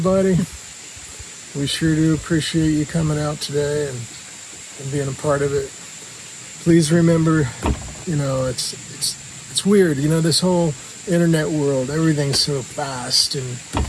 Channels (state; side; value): identical; both; correlation 1.00